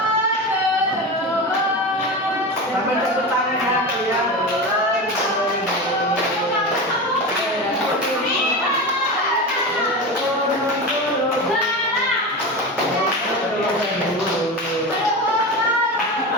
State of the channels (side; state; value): both; normal; correlation 0.24